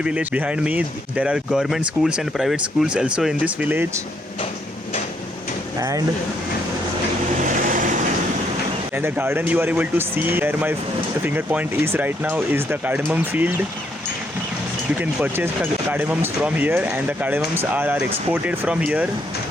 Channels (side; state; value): both; normal; correlation 0.73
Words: behind me. There are government schools and private schools also in this village. And the garden you are able to see where my finger point is right now is the cardamom field. You can purchase cardamoms from here, and the cardamoms are exported from here.